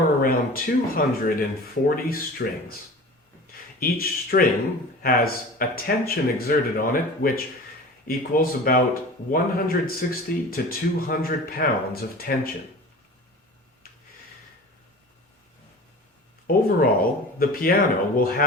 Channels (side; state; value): both; normal; correlation 0.38